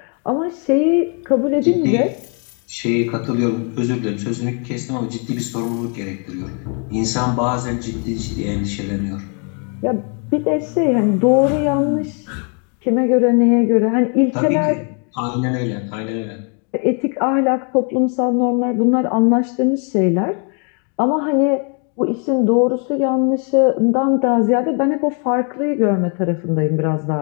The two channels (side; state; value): right; quieter; 39.4 dB